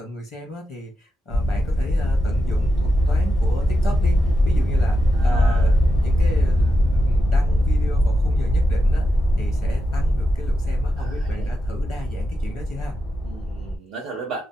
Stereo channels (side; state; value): both; normal; correlation 0.88